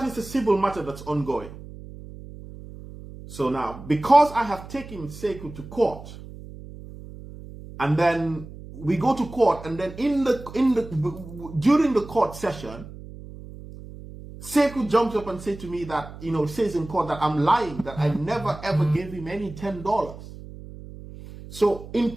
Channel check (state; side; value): noise; right; hum, 15 dB below the sound